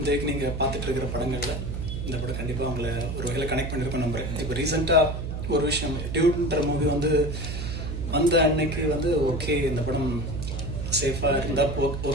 நீங்கள் பார்த்துட்டு இருக்கிற படங்களில் இந்த படம் கண்டிப்பாக அவங்கள ஒரு வகையில் கனெக்ட் பண்ணியிருக்கோம் நம்புறேன். இப்போ ரீசெண்டாக ஒரு விஷயம், டியூட்ன்ற மூவி வந்த அன்னைக்கு ஓகே இந்த படம் சேஃபாக இருந்தால்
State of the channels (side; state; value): right; noise; hum, 4 dB below the sound